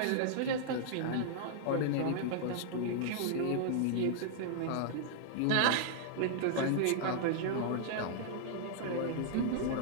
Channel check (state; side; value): different; both; correlation -0.01